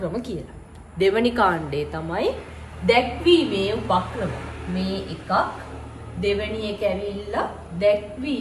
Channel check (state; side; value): identical; both; correlation 1.00